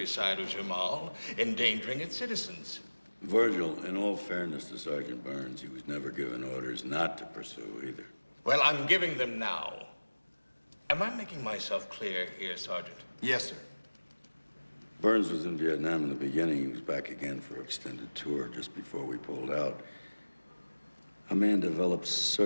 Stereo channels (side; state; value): both; inverted; correlation -1.00